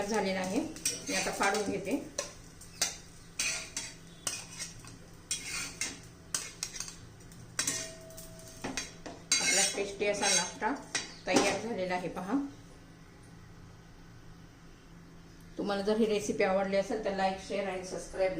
झालेलं आहे. मी आता काढून घेते. आपला टेस्टी असा नाश्ता तयार झालेला आहे पहा. तुम्हाला जर ही रेसिपी आवडली असेल तर लाईक, शेअर आणि सबस्क्राईब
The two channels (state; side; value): identical; both; correlation 1.00